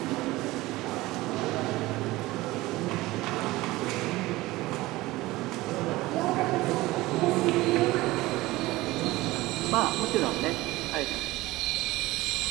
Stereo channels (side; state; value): left; quieter; 19.2 dB